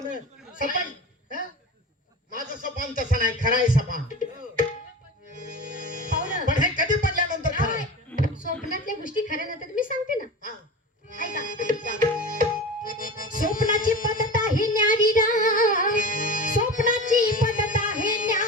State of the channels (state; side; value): normal; both; correlation 0.31